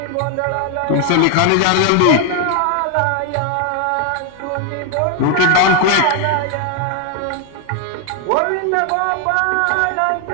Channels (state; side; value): different; both; correlation 0.01